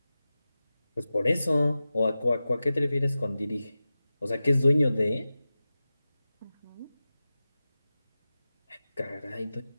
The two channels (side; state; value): both; inverted; correlation -0.95